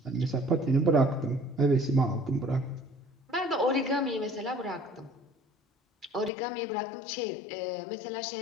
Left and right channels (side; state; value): right; drops out; at 6.3 s